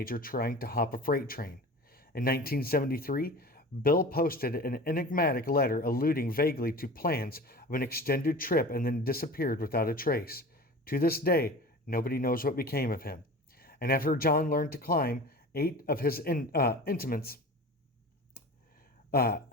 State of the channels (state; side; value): normal; both; correlation 0.37